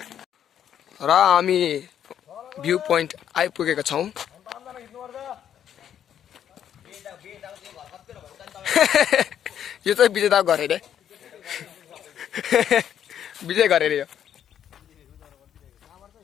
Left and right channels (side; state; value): right; quieter; 9.6 dB